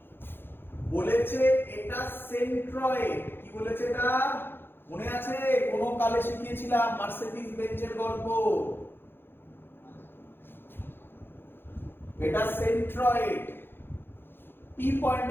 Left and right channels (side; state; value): right; late; 0.10 ms